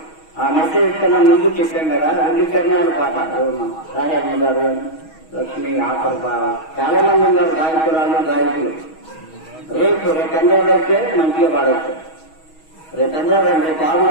ఆ మెసేజ్ కన్నా ముందు చెప్పాం కదా, 2 చరణాలు పాట రాజమ్మ గారు, లక్ష్మి ఆఖరు చాలా మంది ఉన్నారు గాయకురాలు గాయకులు. రేపు చంద్రబాబు అయితే మంచిగా పాడవచ్చు. రేపు చంద్రబాబు రేపు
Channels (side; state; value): right; late; 6.3 ms